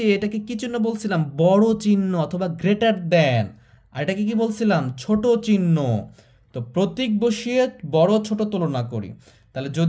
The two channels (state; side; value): identical; both; correlation 1.00